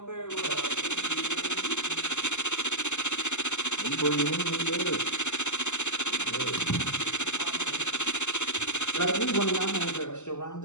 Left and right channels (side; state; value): right; late; 0.83 ms